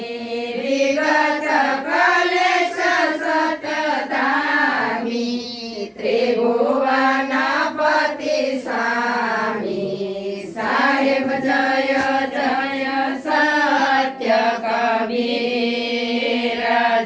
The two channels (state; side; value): identical; both; correlation 1.00